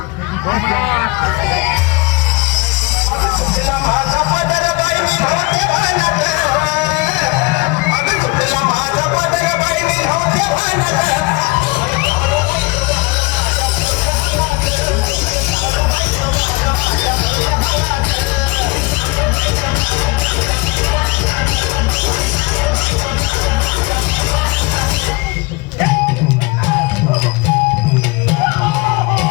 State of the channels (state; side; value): quieter; right; 25.1 dB